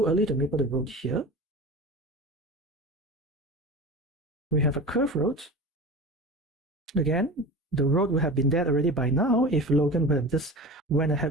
early to maple the road here. We have a curve road. Again, the road would have been dead already by now if Logan would have just went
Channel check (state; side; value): normal; both; correlation 0.32